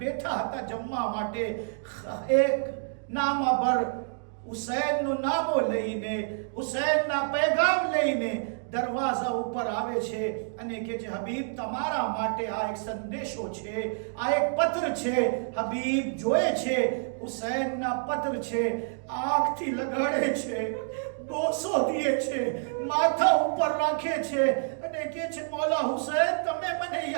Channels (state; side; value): silent; left; digital silence